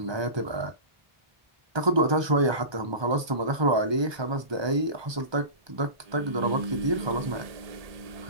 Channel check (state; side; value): late; left; 1.2 ms